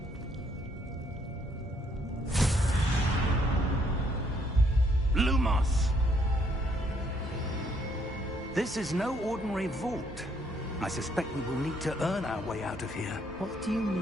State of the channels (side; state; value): both; normal; correlation 0.69